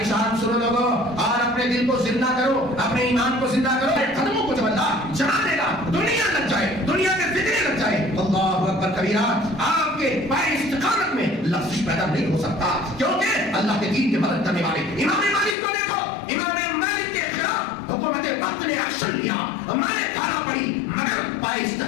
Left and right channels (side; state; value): right; drops out; at 15.6 s